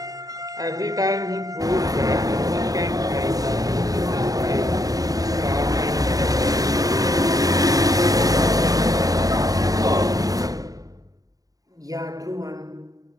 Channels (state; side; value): late; left; 0.18 ms